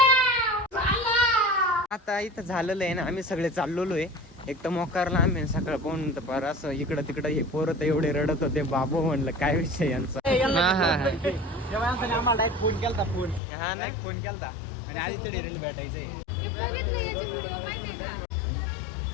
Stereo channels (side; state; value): right; drops out; at 13.4 s